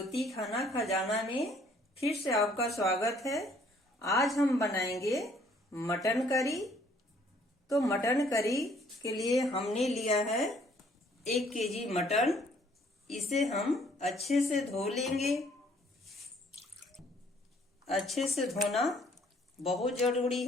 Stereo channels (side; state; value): both; normal; correlation 0.61